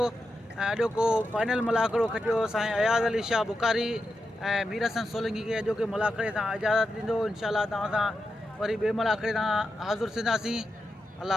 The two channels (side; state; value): both; normal; correlation 0.88